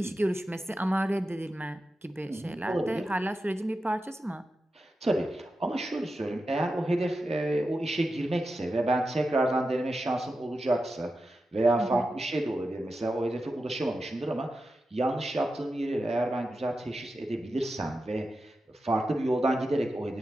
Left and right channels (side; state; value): both; normal; correlation 0.91